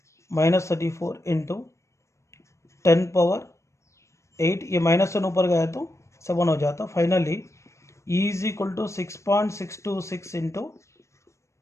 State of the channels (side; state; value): right; late; 0.14 ms